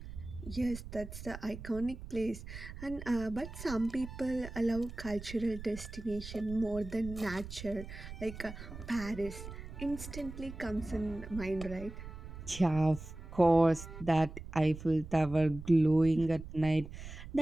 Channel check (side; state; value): right; noise; rumble, 12 dB below the sound